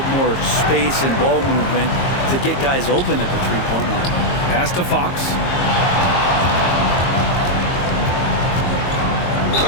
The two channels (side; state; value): right; late; 22 ms